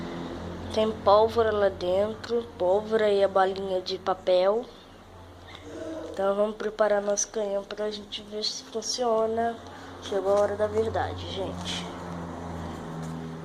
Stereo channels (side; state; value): both; identical; correlation 1.00